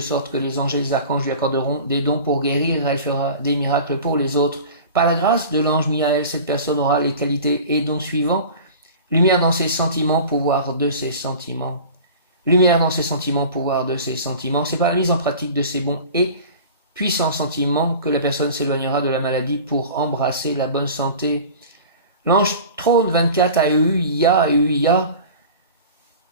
que les anges et les archanges lui accorderont des dons pour guérir. Elle fera des miracles pour les autres. Par la grâce de l'ange Miaël, cette personne aura les qualités et dons suivants. Lumière dans ses sentiments, pouvoir de ses sentiments. Lumière dans ses sentiments, pouvoir de ses sentiments. C'est par la mise en pratique de ces bons et puissants sentiments que la personne s'éloignera de la maladie pour embrasser la bonne santé. L'ange trône 24 Aeuia.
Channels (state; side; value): inverted; both; correlation -0.38